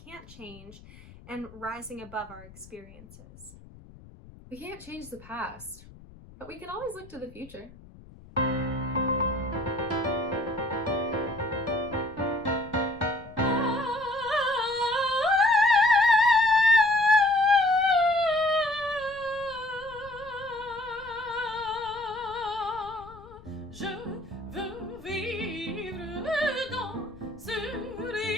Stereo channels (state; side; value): noise; left; rumble, 21 dB below the sound